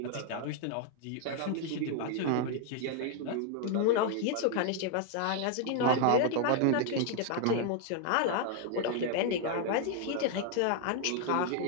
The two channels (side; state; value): both; different; correlation 0.00